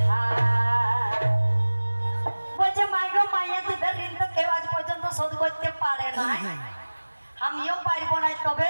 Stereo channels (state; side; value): inverted; both; correlation -1.00